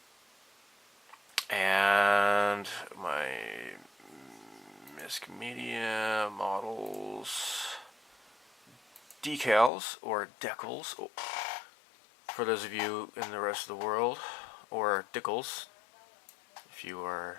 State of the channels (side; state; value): right; drops out; at 9.7 s